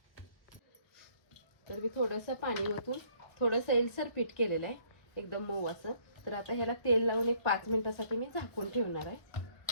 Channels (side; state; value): right; late; 1.0 ms